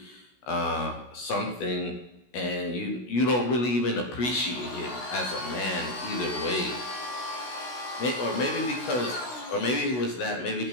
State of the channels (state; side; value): late; right; 16 ms